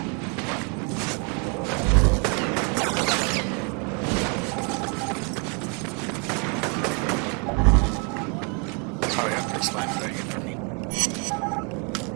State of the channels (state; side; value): quieter; left; 35.5 dB